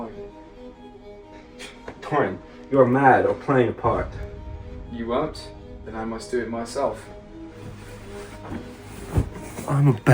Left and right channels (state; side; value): identical; both; correlation 1.00